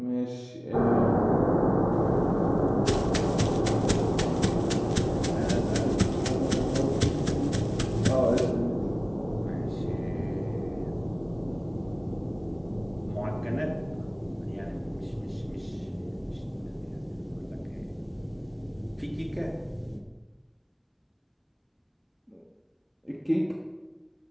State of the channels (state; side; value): identical; both; correlation 1.00